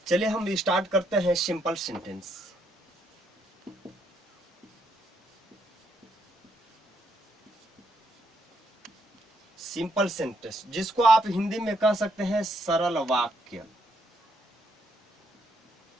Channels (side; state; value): both; normal; correlation 0.74